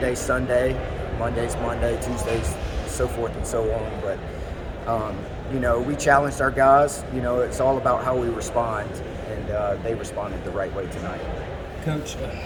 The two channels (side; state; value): both; identical; correlation 1.00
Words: Sunday, Monday's Monday, Tuesday's so forth and so on. But we challenged our guys. It's all about how we respond, and they responded the right way tonight. Coach,